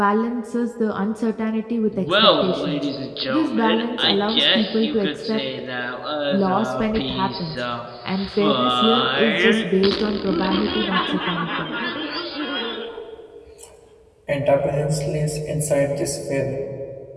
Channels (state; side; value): identical; both; correlation 1.00